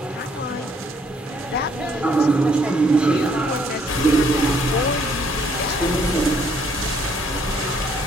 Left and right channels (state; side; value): normal; both; correlation 0.66